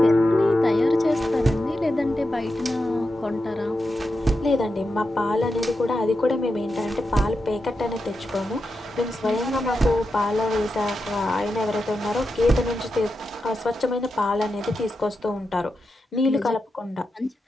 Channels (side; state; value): both; normal; correlation 0.89